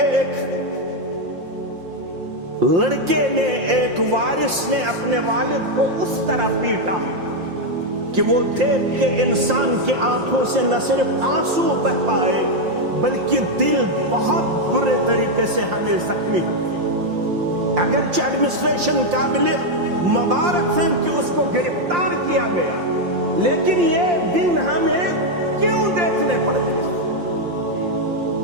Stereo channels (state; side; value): late; left; 5.7 ms